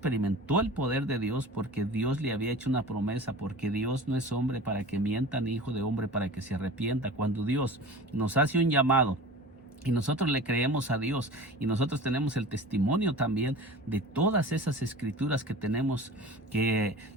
el poder de Dios porque Dios le había hecho una promesa, porque Dios no es hombre para que mienta, ni hijo de hombre para que se arrepienta. Cuando Dios nos hace un llamado y nosotros le creemos a Dios, y nosotros tenemos el testimonio también de todas esas escrituras que tenemos, que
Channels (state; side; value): normal; both; correlation 0.37